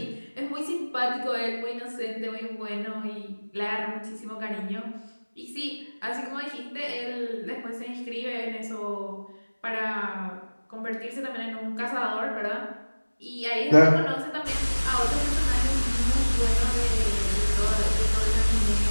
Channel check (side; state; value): both; inverted; correlation -1.00